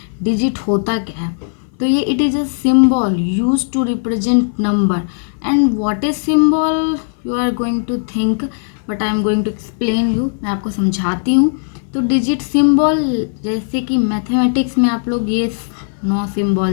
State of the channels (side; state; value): right; silent; 58 dB below the other